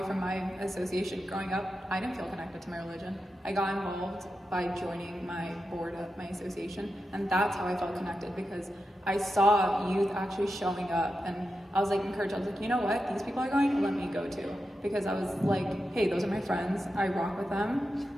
from my association. Growing up, I didn't feel connected to my religion. I got involved by joining my board of my association, and that's how I felt connected, because I saw youth actually showing up, and I was like encouraged. I was like, you know what, these people are going, let me go too, because I was like, hey, those are my friends. I rock with them.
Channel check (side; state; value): both; normal; correlation 0.89